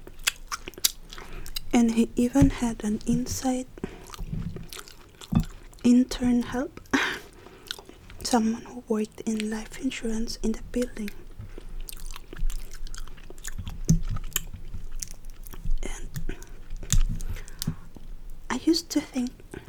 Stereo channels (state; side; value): identical; both; correlation 1.00